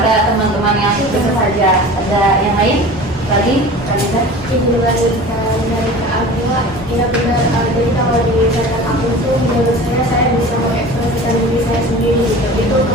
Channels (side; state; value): both; normal; correlation 0.38